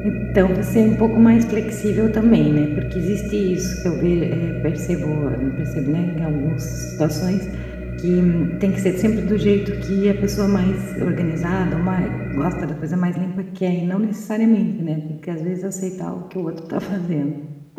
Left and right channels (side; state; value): both; identical; correlation 1.00